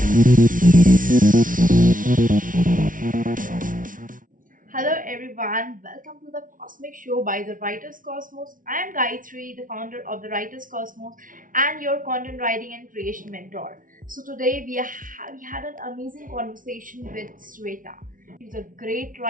Hello everyone, welcome to the Cosmic Show by the Writers Cosmos. I am Gayatri, the founder of the Writers Cosmos and your content writing and creation mentor. So today we had an amazing conversation with Swetha. She's a great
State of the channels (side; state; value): left; late; 0.39 ms